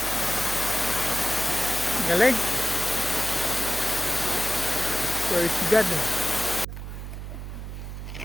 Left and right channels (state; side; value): noise; right; hum, 8 dB below the sound